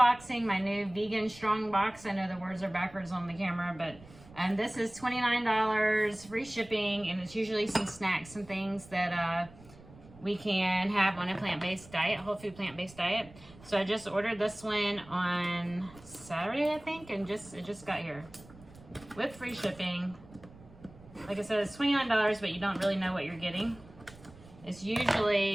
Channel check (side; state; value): right; noise; rumble, 21 dB below the sound